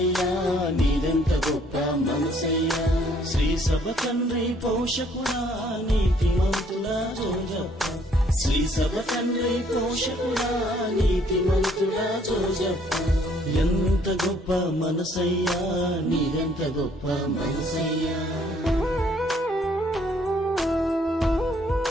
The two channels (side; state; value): both; normal; correlation 0.64